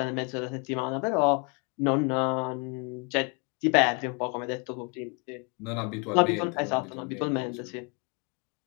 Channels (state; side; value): quieter; right; 33.7 dB